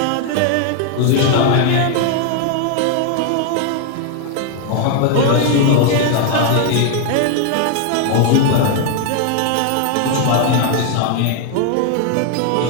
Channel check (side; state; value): both; different; correlation 0.00